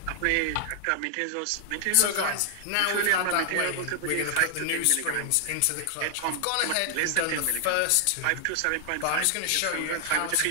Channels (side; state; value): both; different; correlation -0.01